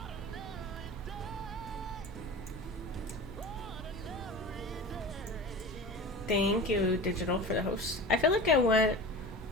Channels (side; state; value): both; normal; correlation 0.33